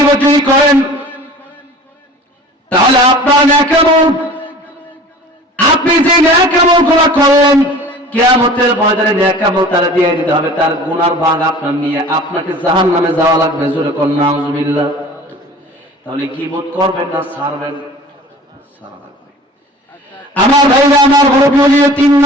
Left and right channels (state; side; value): normal; both; correlation 0.43